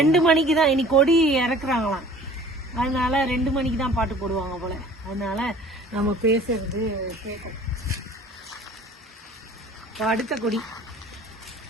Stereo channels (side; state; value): both; normal; correlation 0.48